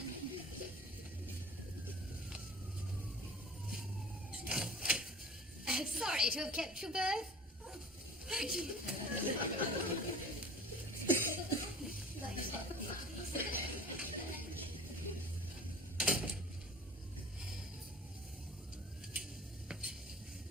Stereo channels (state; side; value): normal; both; correlation 0.42